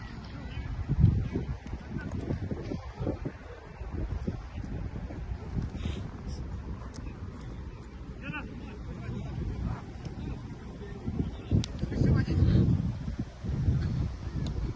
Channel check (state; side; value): identical; both; correlation 1.00